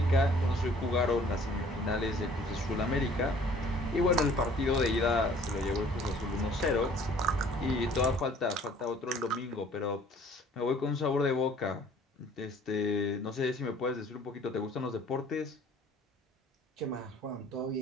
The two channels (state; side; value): normal; both; correlation 0.54